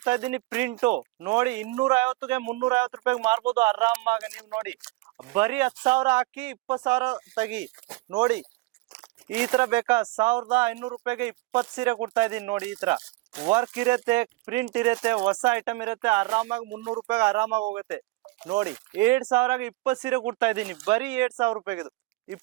ಇದ್ದೀನಿ ಪ್ರಿಂಟು. ನೋಡಿ 250ಗೆ 350 ರೂಪಾಯಿಗೆ ಮಾರ್ಬೋದು ಆರಾಮಾಗಿ. ನೀವು ನೋಡಿ ಬರೀ 10,000 ಹಾಕಿ 20,000 ತೆಗಿ. ನೋಡಿ ಈ ತರ ಬೇಕಾ 1,500 ರೂಪಾಯಿಗೆ 20 ಸೀರೆ ಕೊಡ್ತಾ ಇದೀನಿ ನೋಡಿ. ಈ ತರ ವರ್ಕ್ ಇರುತ್ತೆ, ಪ್ರಿಂಟ್ ಇರುತ್ತೆ, ಹೊಸ ಐಟಮ್ ಇರುತ್ತೆ, ಆರಾಮಾಗಿ 300 ರೂಪಾಯಿಗೆ ಆರಾಮಾಗಿ ಹೋಗುತ್ತೆ. ನೋಡಿ 7,000ಗೆ 20 ಸೀರೆ ಕೊಡ್ತಾ ಇದೀನಿ, ಬರೀ 7,000 ರೂಪಾಯಿಗೆ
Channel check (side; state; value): left; quieter; 20.5 dB